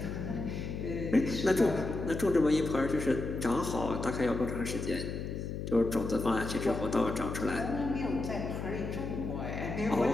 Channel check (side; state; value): left; noise; hum, 5 dB below the sound